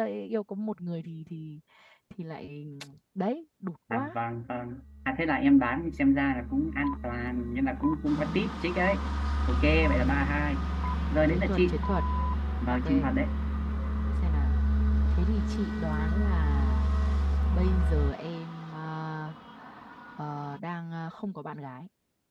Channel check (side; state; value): both; identical; correlation 1.00